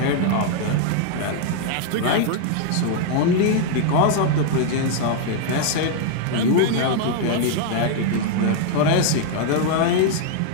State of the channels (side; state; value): both; different; correlation 0.00